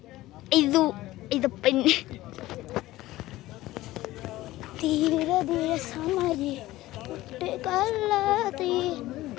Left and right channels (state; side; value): quieter; right; 16.9 dB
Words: ഇത് പിന്നെ തീരെ തീരെ സമാജി